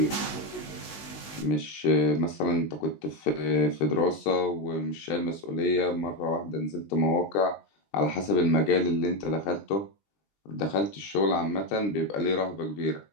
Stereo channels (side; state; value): right; late; 19 ms